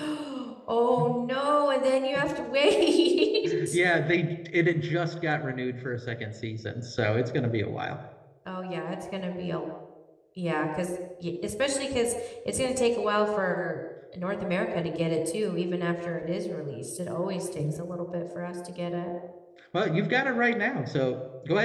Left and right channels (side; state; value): both; identical; correlation 1.00